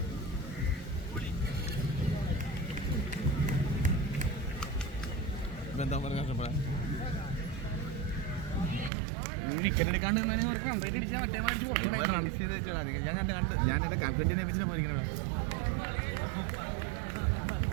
എന്താ പറയുക ഞാൻ കണ്ട് ഞാൻ എന്റെ കമ്പറ്റിനെ വെച്ചിട്ട് പോയിരിക്കണ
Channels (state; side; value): drops out; left; at 8.9 s